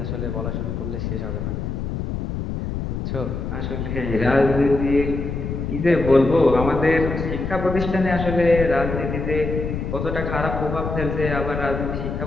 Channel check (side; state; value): left; noise; rumble, 4 dB below the sound